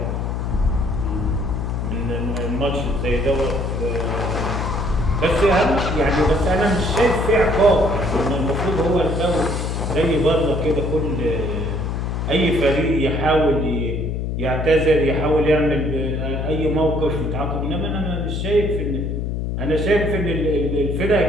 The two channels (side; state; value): left; noise; hum, 2 dB below the sound